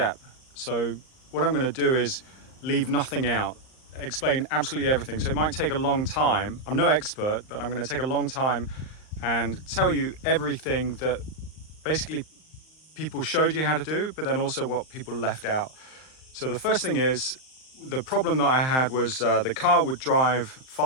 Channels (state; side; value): late; right; 38 ms